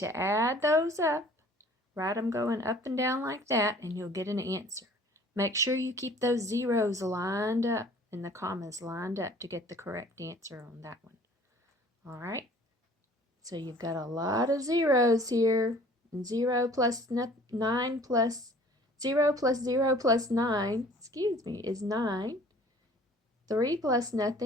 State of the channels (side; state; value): both; normal; correlation 0.52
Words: add those up, write them going up and down like that, and you'll get an answer. Make sure you keep those zeros lined up and the commas lined up to get the correct answer on that one. All right, so you've got a lot of zeros here. And 0 plus 9 plus 0 plus 0 plus 9, is 9. 3 plus